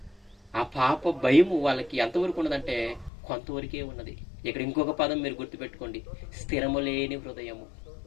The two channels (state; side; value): drops out; right; at 3.1 s